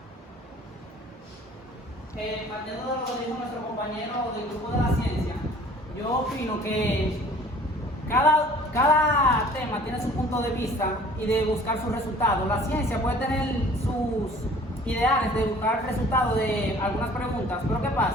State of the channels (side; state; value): both; normal; correlation 0.50